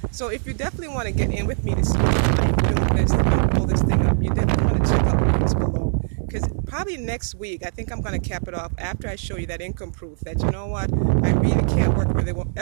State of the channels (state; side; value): silent; left; digital silence